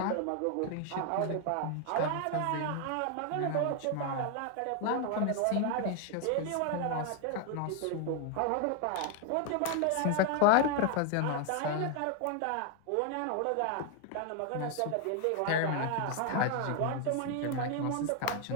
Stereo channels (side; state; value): both; different; correlation 0.01